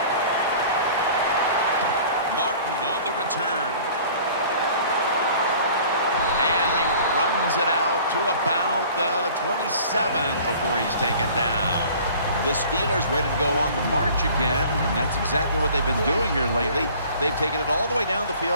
Martin on the return. And he runs it out to about the 27 before he's taken down. The Steelers ready to go on the march again, and that's exactly what they've been doing here lately. They've taken it all the way down the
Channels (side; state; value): both; inverted; correlation -0.48